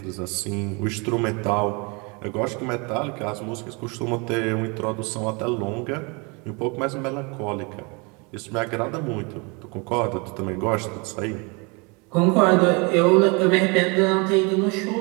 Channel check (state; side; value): quieter; left; 30.3 dB